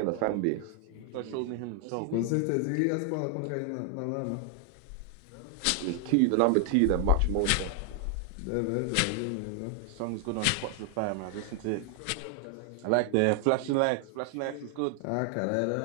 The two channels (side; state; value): both; different; correlation 0.00